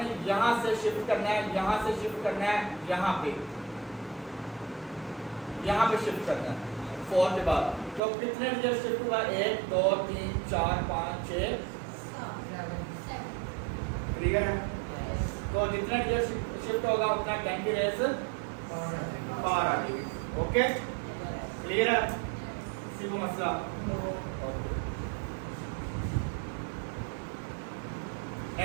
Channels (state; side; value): drops out; left; at 8.0 s